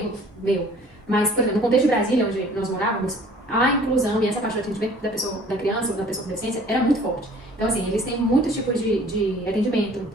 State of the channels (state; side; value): normal; both; correlation 0.52